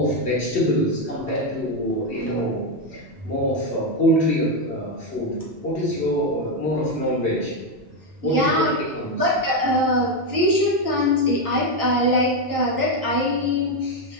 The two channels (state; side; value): normal; both; correlation 0.07